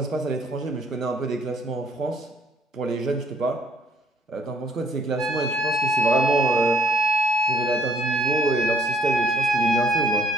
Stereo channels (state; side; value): normal; both; correlation 0.62